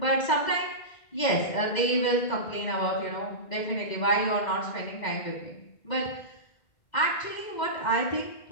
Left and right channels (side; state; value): right; late; 2.1 ms